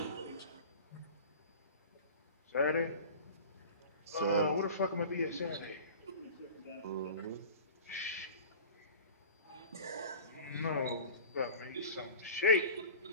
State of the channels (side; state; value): both; inverted; correlation -0.38